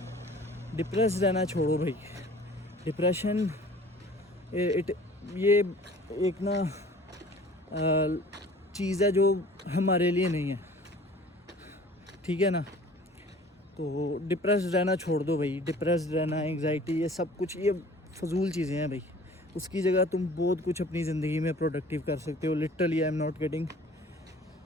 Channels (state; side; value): normal; both; correlation 0.48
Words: डिप्रेस रहना छोड़ो भाई। डिप्रेशन ये एक ना चीज़ है जो हमारे लिए नहीं है, ठीक है ना। तो डिप्रेस रहना छोड़ दो भाई। डिप्रेस रहना, एंग्जाइटी, ये सब कुछ ये फजूल चीज़ें हैं भाई। उसकी जगह तुम बहुत कुछ अपनी ज़िंदगी में प्रोडक्टिव कर सकते हो। Literally I am not kidding.